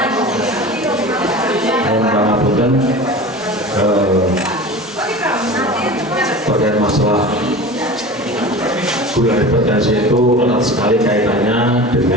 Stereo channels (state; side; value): normal; both; correlation 0.34